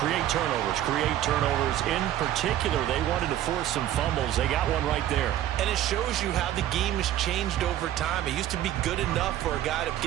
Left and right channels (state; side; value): quieter; left; 12.5 dB